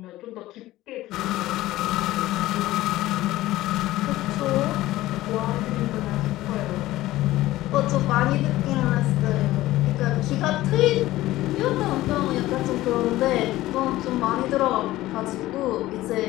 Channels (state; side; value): quieter; right; 16.4 dB